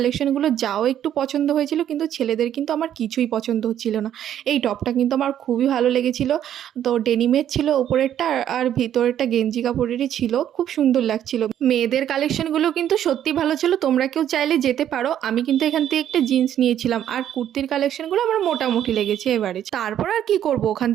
যাও একটু পছন্দ হয়েছিল, কিন্তু ছেলেদের কিন্তু আমার কিছুই পছন্দ হচ্ছিল না। এই টপটা কিন্তু আমার খুবই ভালো লেগেছিল। তো ডেনিমের ছিল ওপরেরটা, আর ভিতরেরটা গেঞ্জি কাপড়েরই ছিল, খুব সুন্দর লাগছিল। মেয়েদের কালেকশনগুলো কিন্তু সত্যি ভালো ছিল, তোমরা কেউ চাইলে যেতে পারো। আমি কিন্তু এখান থেকে একটা জিন্স নিয়েছিলাম, আর কুর্তির কালেকশনগুলো আমার মোটামুটি লেগেছে এবারে। তারপর আর কি করব, ওখান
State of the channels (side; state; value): left; quieter; 10.6 dB